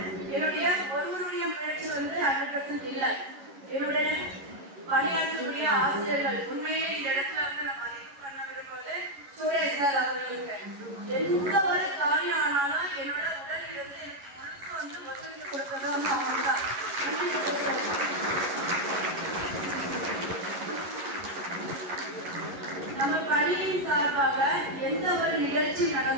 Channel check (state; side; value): late; left; 11 ms